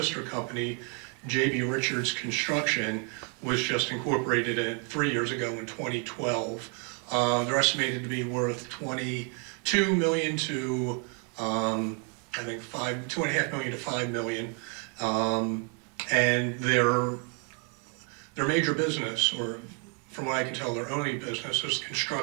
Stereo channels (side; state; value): left; quieter; 37.3 dB